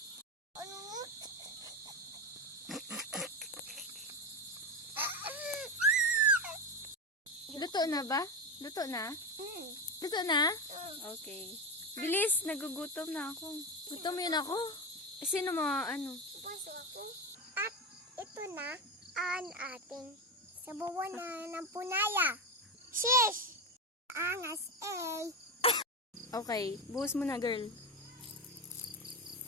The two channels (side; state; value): both; normal; correlation 0.16